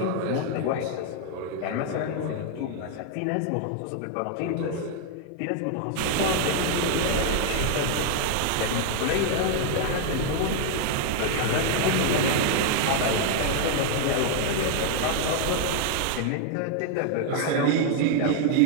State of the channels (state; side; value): different; both; correlation 0.00